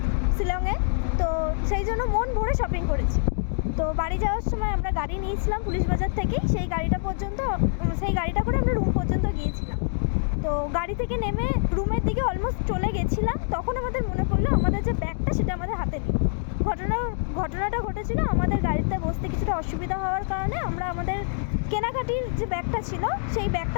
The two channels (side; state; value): right; silent; digital silence